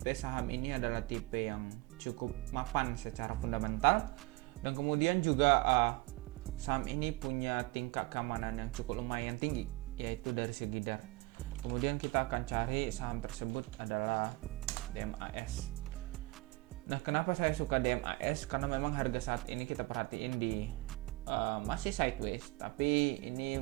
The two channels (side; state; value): left; quieter; 22.5 dB